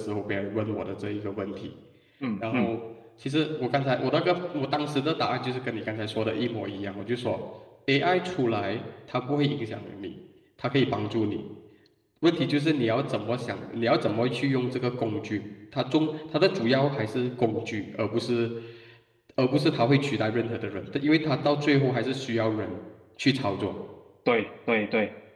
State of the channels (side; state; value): both; identical; correlation 1.00